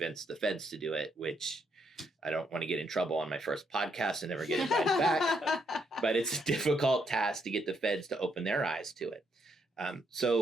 the feds to do it, which I don't want to get in trouble on my first podcast and never get invited back. But it's a difficult task to get the feds to open their eyes to it.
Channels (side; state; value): both; normal; correlation 0.75